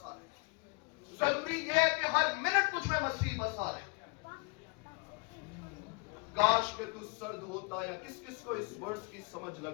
रहे। जरूरी यह है कि हर मिनट तुझ में मसीह बसा रहे। काश के तू सर्द होता, या किस किस को इस वर्ष की समझ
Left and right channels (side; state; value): right; quieter; 28.6 dB